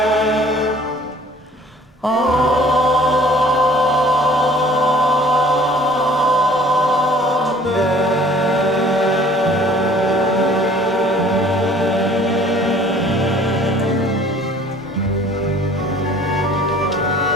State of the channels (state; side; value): normal; both; correlation 0.53